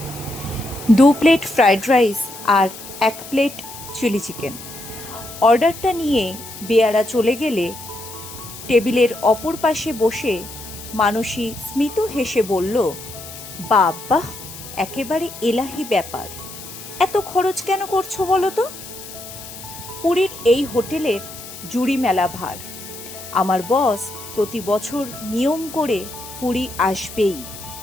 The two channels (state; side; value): noise; left; hiss, 14 dB below the sound